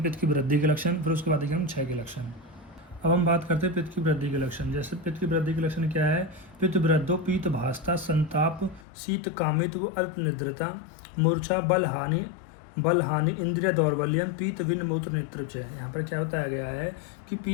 पित्त की वृद्धि के लक्षण, फिर उसके बाद देखेंगे हम क्षय के लक्षण। अब हम बात करते हैं पित्त की वृद्धि के लक्षण। जैसे पित्त की वृद्धि के लक्षण क्या है, पित्त वृद्धो पीत भासता संताप शीत कामित्व अल्प निद्रता मूर्छा बल हानि इंद्रिय दौर्बल्यम पीत विन मूत्र नेत्र। यहाँ पर क्या बताया गया है कि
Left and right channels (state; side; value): drops out; right; at 8.8 s